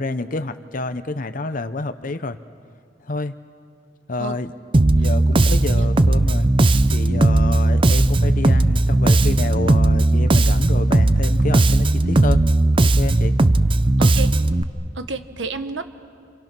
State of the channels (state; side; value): normal; both; correlation 0.89